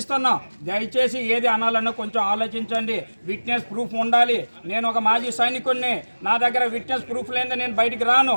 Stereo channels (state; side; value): inverted; both; correlation -1.00